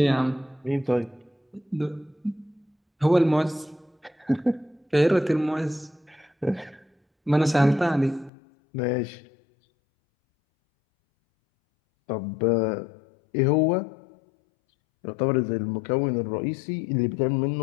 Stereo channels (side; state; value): right; drops out; at 8.3 s